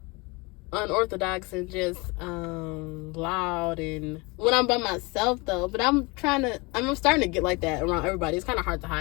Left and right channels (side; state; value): right; quieter; 26.7 dB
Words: unorthodox and just loud, and when I'm by myself though. But I'm starting to get like that around everybody. It's kind of hard to